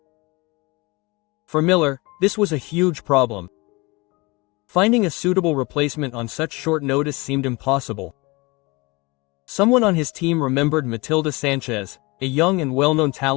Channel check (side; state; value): right; quieter; 25.2 dB